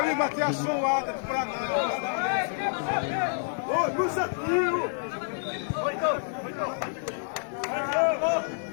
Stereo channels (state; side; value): silent; right; digital silence